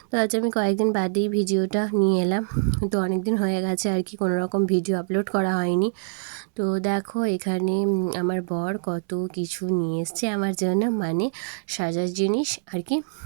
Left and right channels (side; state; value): left; silent; 62 dB below the other